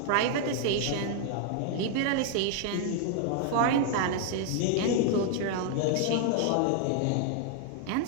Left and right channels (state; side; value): different; both; correlation 0.00